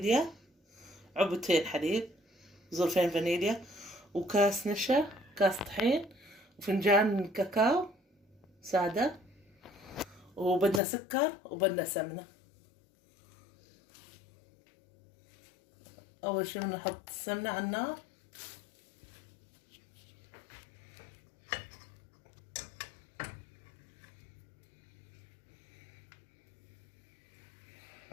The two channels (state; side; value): drops out; right; at 10.8 s